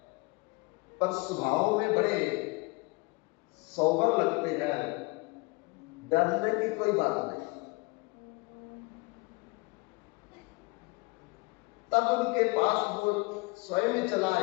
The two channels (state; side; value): quieter; right; 26.5 dB